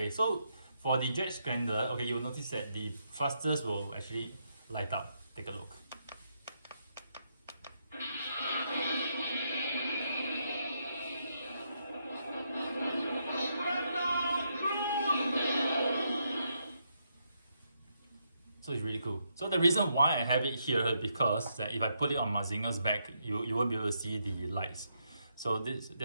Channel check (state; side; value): inverted; both; correlation -0.79